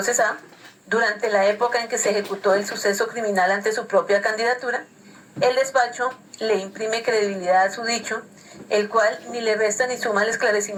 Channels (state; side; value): identical; both; correlation 1.00